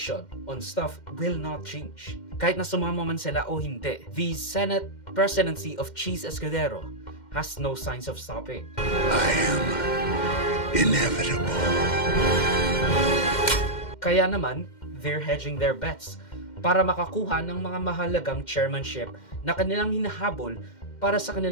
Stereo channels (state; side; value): late; right; 2.1 ms